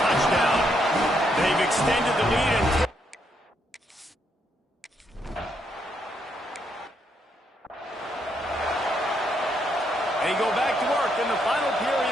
They've extended the lead and they go back to work in the final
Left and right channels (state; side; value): normal; both; correlation 0.76